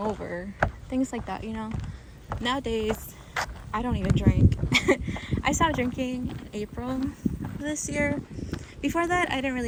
things like that, you know. Nowadays, I don't even drink. I stopped drinking in April this year. Before that, I didn't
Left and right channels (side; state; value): both; identical; correlation 1.00